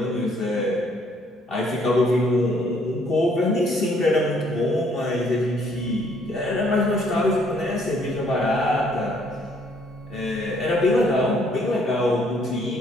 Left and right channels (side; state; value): both; normal; correlation 0.65